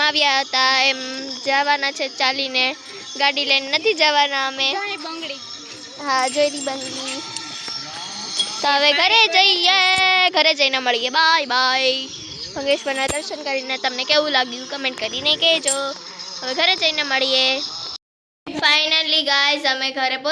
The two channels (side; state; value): both; identical; correlation 1.00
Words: આવ્યા હતા એમ જવાના છે ચાલીને. ગાડી લઈને નથી જવાના અમે. હા જોઈલી બંગલી. તો હવે ઘરે જઈએ. ઘરે જઈને મળીએ. Bye bye. ભંગેશ્વરના દર્શન કરીને તમને કેવું લાગ્યું કમેન્ટ કરીને કહેજો. હવે ઘરે જઈને મળીએ. ફાઇનલી ગાઈઝ અમે ઘરે